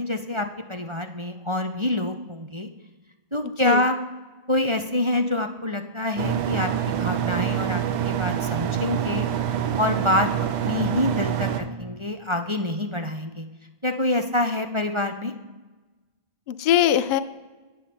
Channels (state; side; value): late; left; 1.4 ms